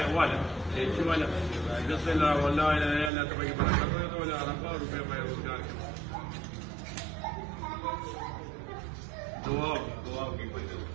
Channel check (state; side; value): drops out; left; at 3.1 s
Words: ولا شو ولا يصل ولا لا تبقى بركه ولا ربار وما يرجع دواء يقول